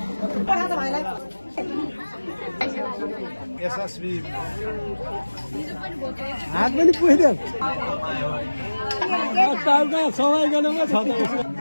यशस्वी हात पनि पुग्यो सवाई गर्नुमा छ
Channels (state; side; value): inverted; both; correlation -1.00